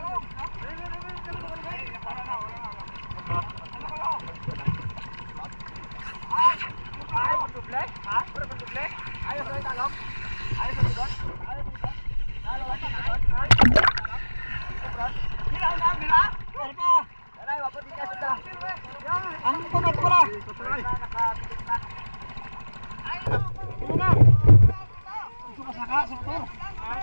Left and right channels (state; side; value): inverted; both; correlation -1.00